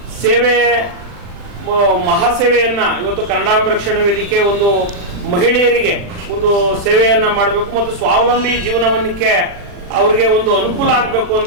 ಮಹಾಸೇವೆಯನ್ನು ಇವತ್ತು ಕನ್ನಡಾಂಬೆ ರಕ್ಷಣಾ ವೇದಿಕೆ ಒಂದು ಮಹಿಳೆಯರಿಗೆ ಒಂದು ಸೇವೆಯನ್ನು ಮಾಡಬೇಕು ಮತ್ತು ಸ್ವಾವಲಂಬಿ ಜೀವನವನ್ನಕ್ಕೆ ಅವ್ರಿಗೆ ಒಂದು ಅನುಕೂಲ ಆಗಬೇಕು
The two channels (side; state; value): left; late; 40 ms